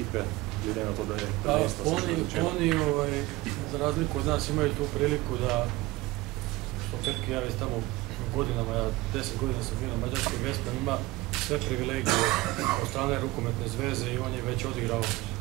glede na to, da je prvenstvo se že začelo? Oni, za razliku od nas, imaju tu priliku da, što Petki, ja već tamo godinama, ja 10 godina sam bio na mađarskom Vesprem, ima sve privilegije od strane rukometne zveze i on je već odigrao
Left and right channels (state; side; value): quieter; left; 19.6 dB